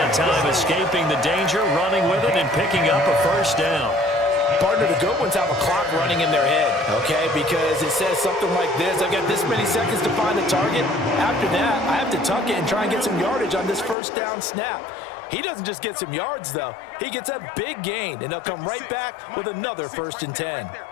time, escaping the danger, running with it, and picking up a first down. Partner, the good ones have a clock running in their head, okay? Because it says something like this: I've got this many seconds to find a target. After that, I have to tuck it and try and get some yardage on this first down snap. He doesn't just get some yards, though. He gets a big gain, and they'll come right back with another 1st and 10.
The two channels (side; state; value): right; drops out; at 14.0 s